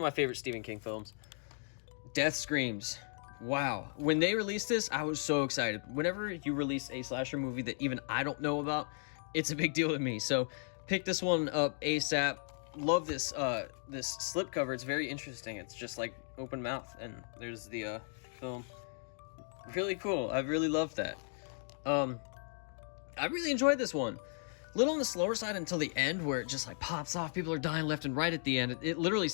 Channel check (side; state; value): right; silent; 54 dB below the other